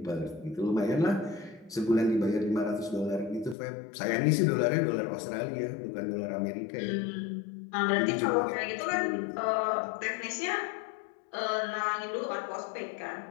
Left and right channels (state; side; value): drops out; right; at 3.6 s